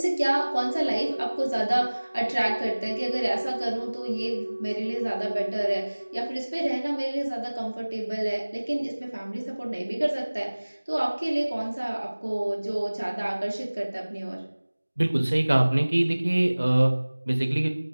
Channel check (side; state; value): both; inverted; correlation -1.00